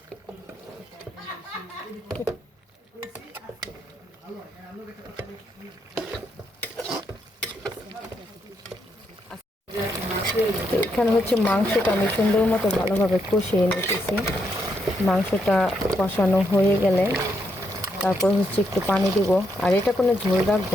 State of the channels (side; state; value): both; normal; correlation 0.79